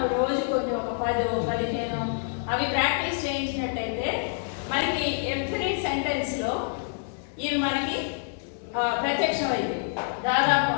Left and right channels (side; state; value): right; silent; digital silence